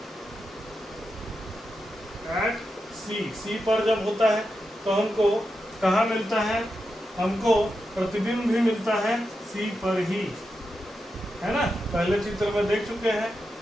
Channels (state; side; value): normal; both; correlation 0.88